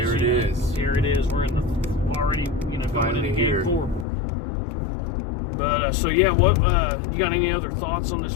it is. Here it is. We're in the already, going into game 4. So yeah, what you got any other thoughts on this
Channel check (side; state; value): right; drops out; at 4.0 s